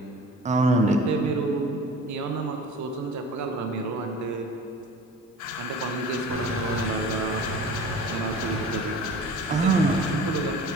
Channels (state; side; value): normal; both; correlation 0.42